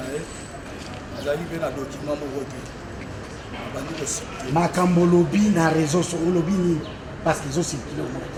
Makambo lobi na réseau sur lobi ni parce qu'ils ont circulé au monde.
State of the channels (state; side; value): identical; both; correlation 1.00